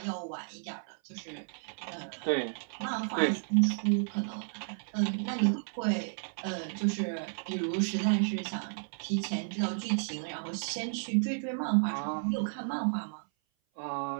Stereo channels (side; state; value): left; silent; 56 dB below the other